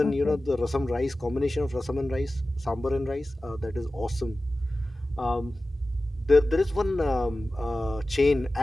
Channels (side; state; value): both; normal; correlation 0.96